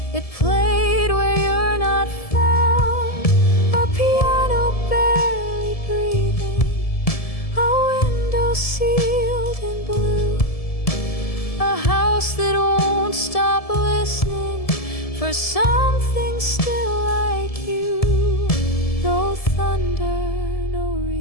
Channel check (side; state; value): right; late; 1.7 ms